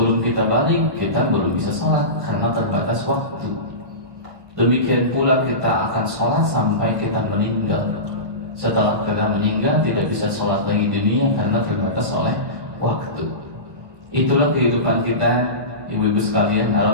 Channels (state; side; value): late; left; 1.3 ms